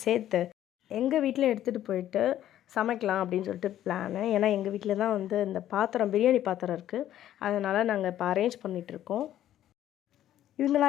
சேர்த்து எங்கள் வீட்டில் எடுத்துகிட்டு போயிட்டு சமைக்கலாம் அப்படின்னு சொல்லிட்டு பிளானு. ஏன்னா எங்கள் வீட்டில் தான் வந்து இந்த பாத்திரம், பிரியாணி பாத்திரம் இருக்குது. அதனால் நாங்கள் இப்போ அரேஞ்ச் பண்ணிகிட்ருக்கோம்.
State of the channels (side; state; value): right; quieter; 12.1 dB